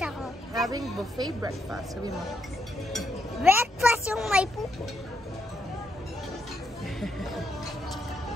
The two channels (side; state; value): both; normal; correlation 0.78